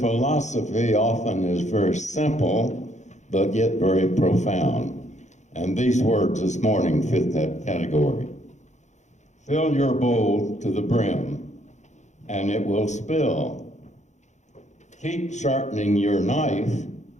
often is very simple, but yet very profound. And these words this morning fit that category. Fill your bowl to the brim, and it will spill. Keep sharpening your knife,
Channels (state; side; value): late; right; 0.34 ms